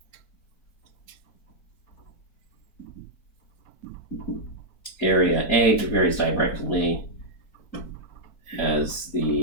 Area A varies directly as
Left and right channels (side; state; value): right; late; 4.4 ms